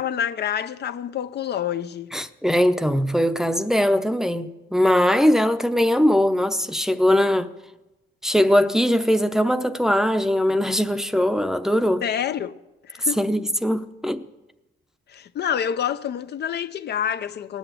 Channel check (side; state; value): both; normal; correlation 0.83